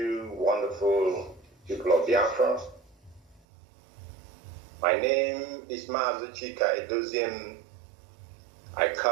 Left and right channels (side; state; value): left; drops out; at 3.4 s